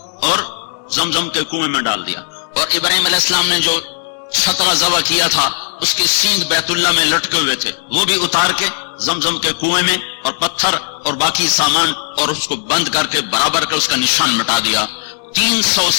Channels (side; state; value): right; silent; digital silence